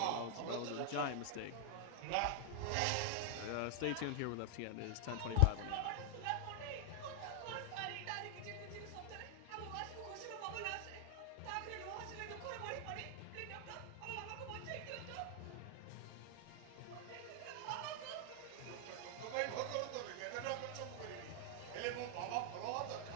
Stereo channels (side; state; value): both; different; correlation 0.00